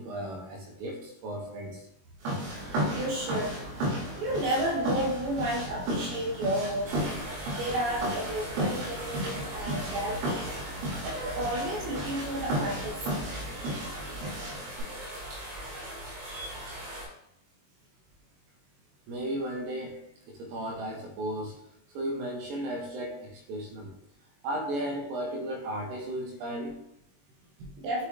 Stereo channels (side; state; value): left; late; 21 ms